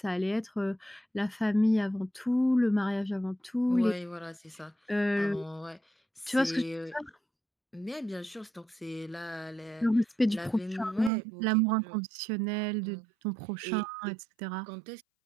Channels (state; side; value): drops out; left; at 11.1 s